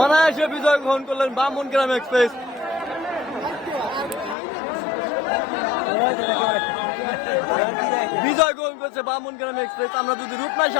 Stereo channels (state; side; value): drops out; right; at 4.4 s